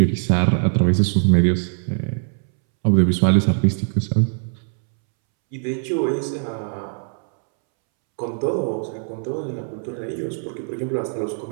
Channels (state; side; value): silent; left; 65 dB below the other